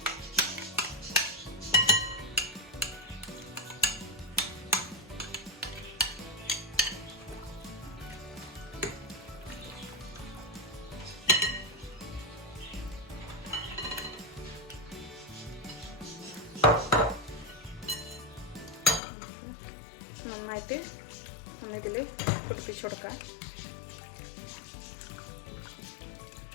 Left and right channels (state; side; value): drops out; right; at 19.0 s